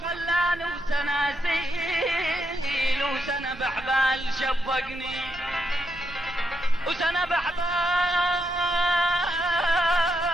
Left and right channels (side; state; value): right; noise; hum, 22 dB below the sound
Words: خلاني، وسناسيل وسنة بحبال شبقني، وسنة بحبال